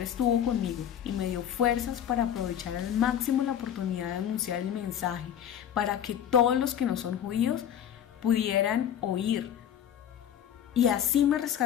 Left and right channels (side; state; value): right; quieter; 9.7 dB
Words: conmigo y me dio fuerzas para aprovechar al máximo la oportunidad de anunciar el mensaje, para que todos los que no son judíos pudieran oír. Y así me